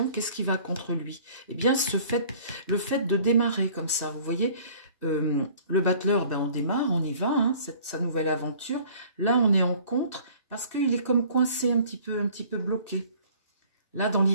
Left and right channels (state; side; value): inverted; both; correlation -0.51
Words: Qu'est-ce qui va contre lui? Eh bien, le fait de démarrer comme ça, vous voyez, le battleur, on démarre, on y va, hein, sa nouvelle aventure. Là, on est en contre parce qu'il est comme coincé un petit peu bloqué. Là, dans